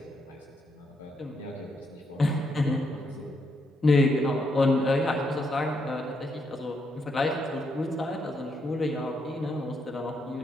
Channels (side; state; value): both; normal; correlation 0.78